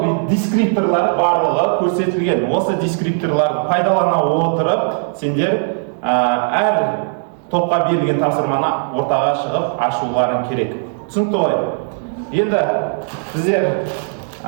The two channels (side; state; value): left; silent; digital silence